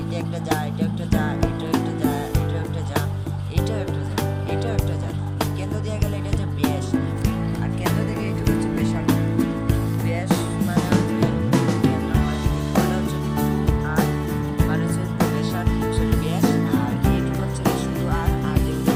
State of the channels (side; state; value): both; identical; correlation 1.00